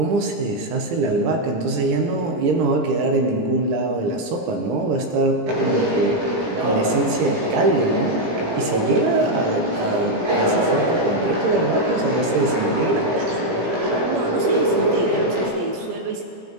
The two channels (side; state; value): left; late; 17 ms